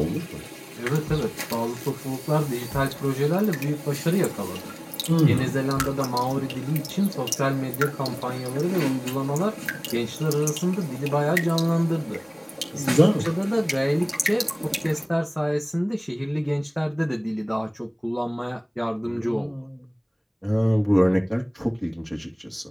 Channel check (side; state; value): both; identical; correlation 1.00